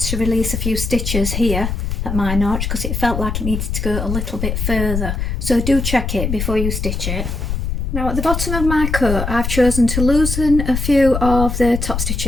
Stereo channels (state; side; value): noise; left; rumble, 2 dB below the sound